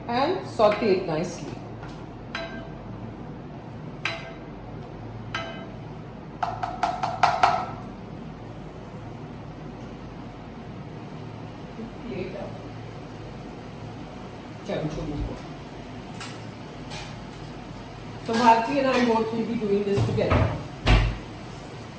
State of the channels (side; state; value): both; identical; correlation 1.00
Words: And saute it nicely. So Bharti and I both will be doing this together.